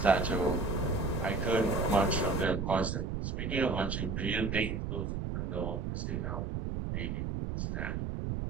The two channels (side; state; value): right; noise; rumble, 2 dB below the sound